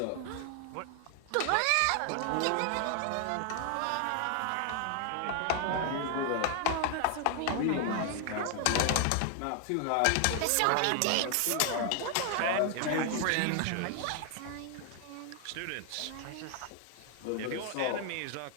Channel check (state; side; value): different; both; correlation 0.00